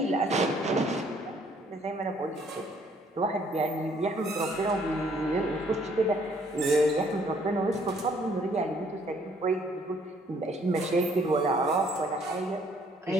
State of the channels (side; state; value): both; normal; correlation 0.63